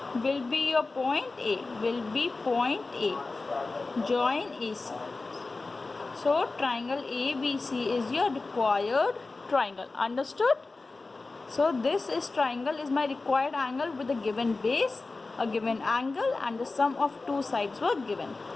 will be your point A, join AC. So triangle ABC is your required triangle. Understood? So this triangle is my required angle with a given base, a given angle, and the sum of two sides were given.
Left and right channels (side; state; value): right; quieter; 3.6 dB